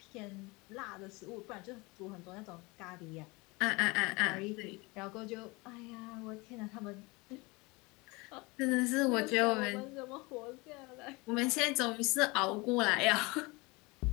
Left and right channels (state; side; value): quieter; right; 25.3 dB